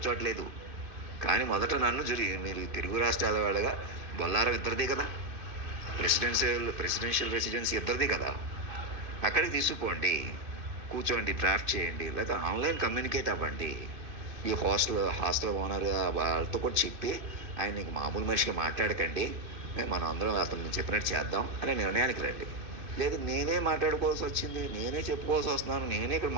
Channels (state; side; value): late; left; 2.5 ms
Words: కానీ మొదట నన్ను మీరు తెలుగు రాష్ట్రాల వాళ్ళగా బొల్లారం ఇద్దరిది కదా, ప్రెసిడెన్షియల్ రెసిడెన్సీ ఇద్దరిది కదా, అక్కడికి తీసుకుపోండి, కూర్చోండి, డ్రాఫ్ట్ చేయండి, లేదా ఆన్లైన్ కమ్యూనికేట్ అవ్వండి. ఈ హాస్టల్ ఓనర్ వాళ్ళతో కూడా చెప్పి ఆయన నీకు మామూలు మనిషిగా మాట్లాడకండి, మనం అందరం అతను చెప్పినట్టు చేద్దాం అనే నిర్ణయానికి రండి. లేదు నేనే మాట్లాడుకోవాల్సి వచ్చింది, నేనే చెప్పుకోవాల్సి వస్తున్నాను, నేనే ఇక్కడ